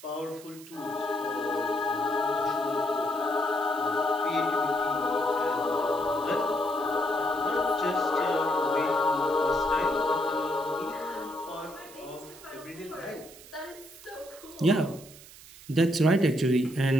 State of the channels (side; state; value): right; noise; hiss, 19 dB below the sound